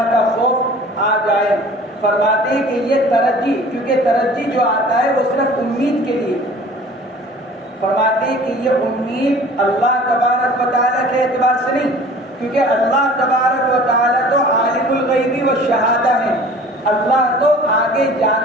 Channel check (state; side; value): normal; both; correlation 0.46